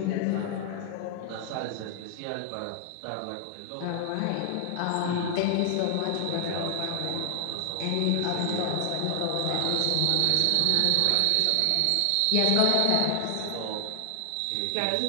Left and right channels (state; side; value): different; both; correlation 0.00